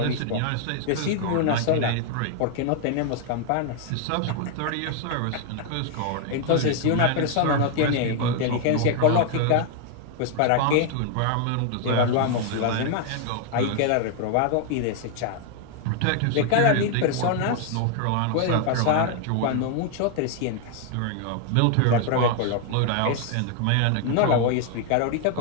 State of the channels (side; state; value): both; different; correlation 0.00